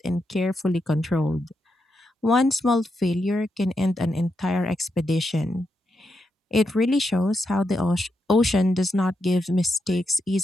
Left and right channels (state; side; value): normal; both; correlation 0.84